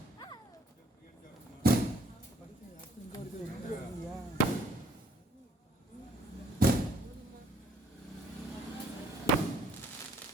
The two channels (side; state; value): both; normal; correlation 0.64